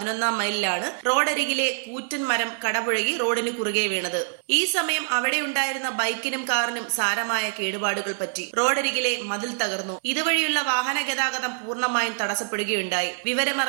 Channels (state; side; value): silent; left; digital silence